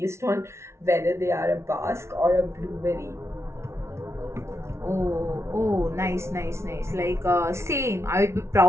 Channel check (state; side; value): late; left; 0.13 ms